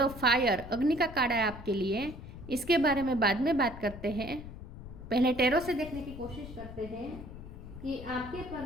ऑफ फायर, अग्नि का कार्ड है आपके लिए। इसके बारे में बाद में बात करते हैं। पहले टैरो से देखने की कोशिश करते हैं कि आपके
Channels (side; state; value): left; noise; rumble, 13 dB below the sound